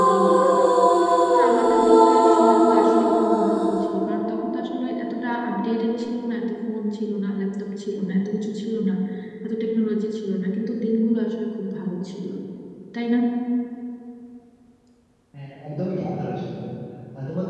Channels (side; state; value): both; identical; correlation 1.00